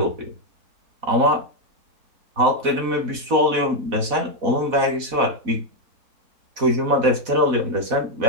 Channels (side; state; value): left; late; 4.1 ms